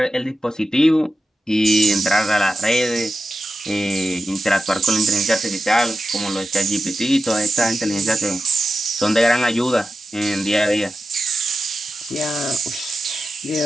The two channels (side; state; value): both; normal; correlation 0.91